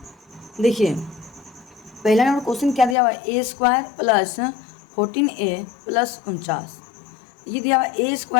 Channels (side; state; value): right; drops out; at 3.0 s